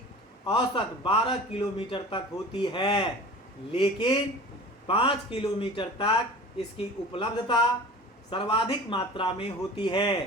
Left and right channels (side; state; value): both; normal; correlation 0.39